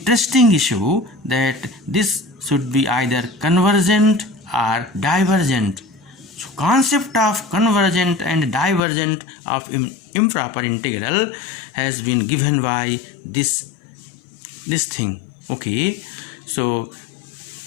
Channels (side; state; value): right; drops out; at 8.8 s